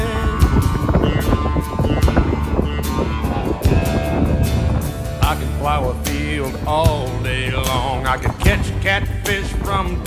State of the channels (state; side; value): identical; both; correlation 1.00